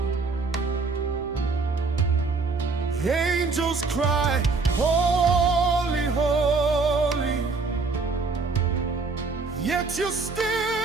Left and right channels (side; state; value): left; quieter; 4.2 dB